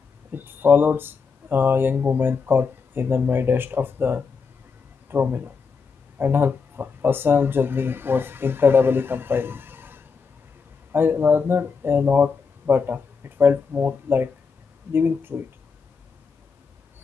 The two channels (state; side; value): quieter; right; 5.3 dB